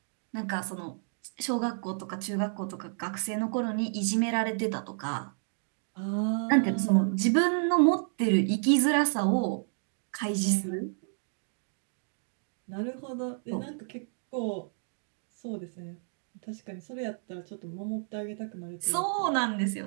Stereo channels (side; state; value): left; silent; digital silence